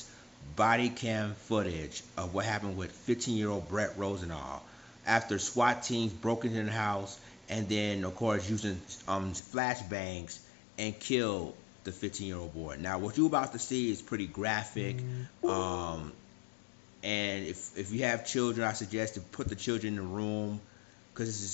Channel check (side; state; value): right; drops out; at 9.4 s